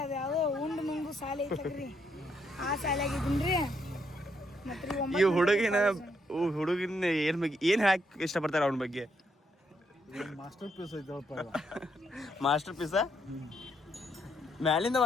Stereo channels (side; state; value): both; normal; correlation 0.75